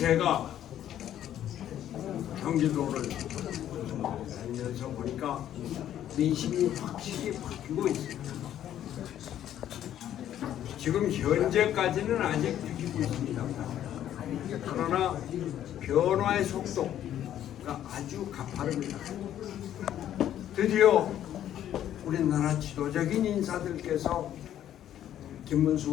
경기도를 다니면서 보니까 민심이 확실히 바뀌고 있습니다. 지금 현재까지는 아직 느끼고 있습니다. 그러나 변화의 속도가 아주 가파릅니다. 드디어 우리나라 지도적인 인사들께서 김문수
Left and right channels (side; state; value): right; quieter; 11.2 dB